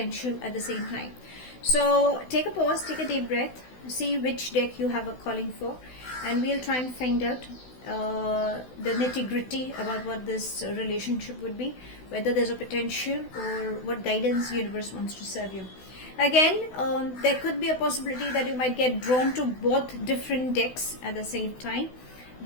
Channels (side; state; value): right; late; 16 ms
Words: at the same time. So take a pause, take a deep breath, see which deck you have a calling for, and we'll try and find out the nitty-gritty about what this relationship would be, whether there's a potential or what guidance the universe wants to serve you. Again, there could be a possibility that you might get drawn to both different decks at the same time.